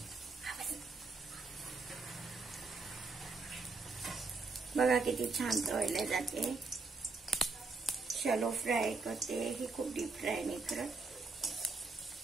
बघा किती छान तळल्या जाते. शॅलो फ्राय करते ही, खूप डीप फ्राय नाही करत.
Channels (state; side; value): quieter; left; 4.0 dB